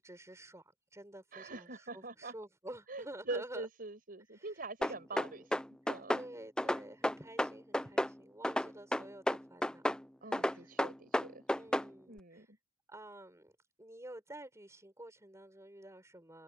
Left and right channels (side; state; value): both; normal; correlation 0.84